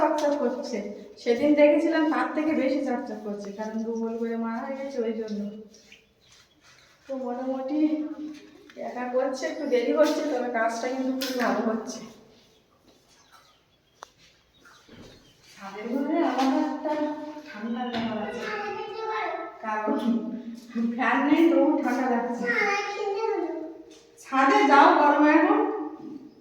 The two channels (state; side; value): identical; both; correlation 1.00